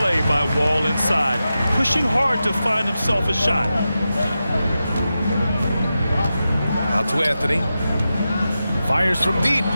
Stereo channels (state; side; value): inverted; both; correlation -0.91